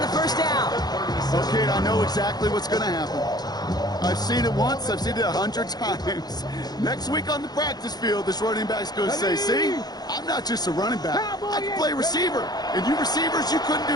the first down. Okay, I know exactly what's going to happen. I've seen it once. I've seen it 100 times. Next week on the practice field, this running back's going to say, see, I'm not just a running back. I can play receiver. And you receivers, you couldn't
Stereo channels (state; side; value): late; right; 0.19 ms